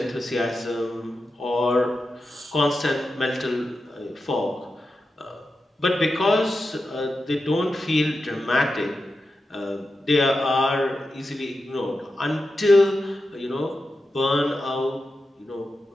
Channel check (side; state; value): both; normal; correlation 0.90